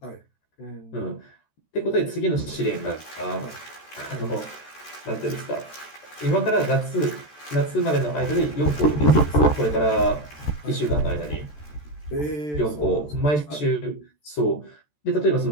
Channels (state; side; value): late; right; 13 ms